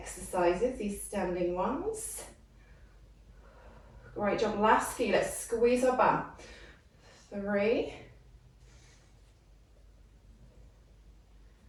these standing ones. Great job. Last few. Let's squeeze our bum. 3,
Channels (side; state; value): both; identical; correlation 1.00